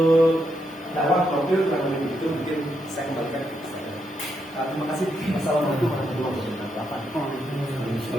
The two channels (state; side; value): normal; both; correlation 0.80